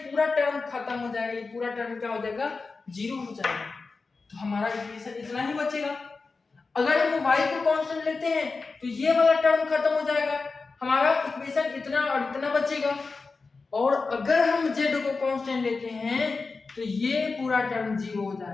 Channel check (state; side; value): quieter; right; 4.2 dB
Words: पूरा टर्म खत्म हो जाएगा, ये पूरा टर्म क्या हो जाएगा 0 हो जाएगा। तो हमारा इक्वेशन इतना ही बचेगा। अगर हम y को कांस्टेंट लेते हैं तो ये वाला टर्म खत्म हो जाएगा, हमारा इक्वेशन इतना और इतना बचेगा। और अगर हम z को कांस्टेंट लेते हैं तो ये पूरा टर्म 0 हो